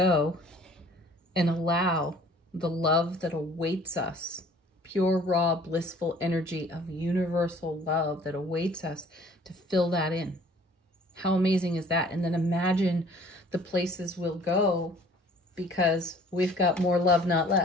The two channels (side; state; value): both; normal; correlation 0.53